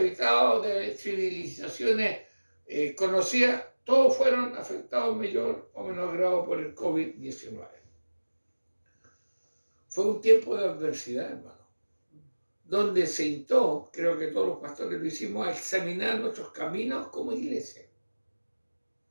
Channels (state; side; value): inverted; both; correlation -1.00